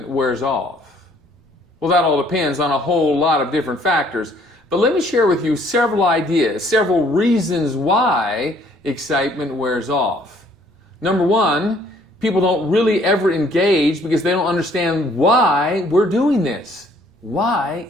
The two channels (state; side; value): normal; both; correlation 0.61